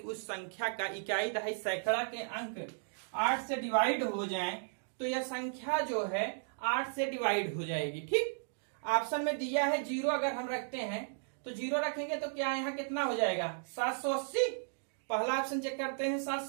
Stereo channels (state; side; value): silent; left; digital silence